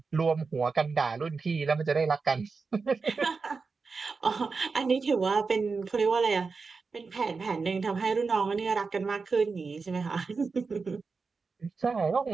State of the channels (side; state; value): left; quieter; 4.6 dB